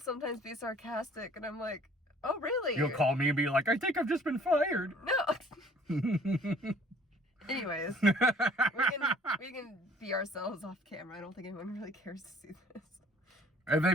be sarcastic, and I'm like, oh, really? You'll call me and be like, I think I've just been fired. No. Anyways, we can be ourselves off camera. I don't think anyone really cares to see this. If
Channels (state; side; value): normal; both; correlation 0.55